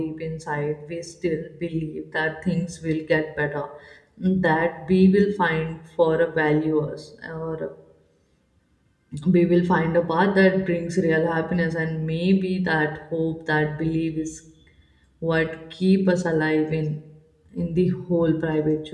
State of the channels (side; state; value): both; identical; correlation 1.00